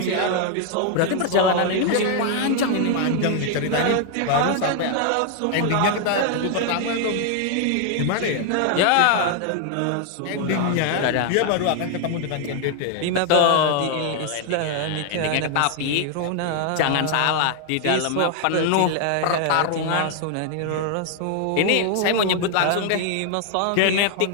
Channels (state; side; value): different; both; correlation 0.00